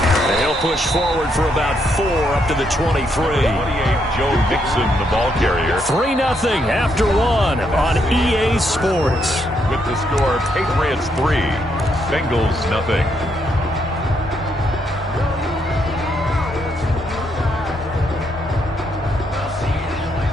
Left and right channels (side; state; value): both; normal; correlation 0.76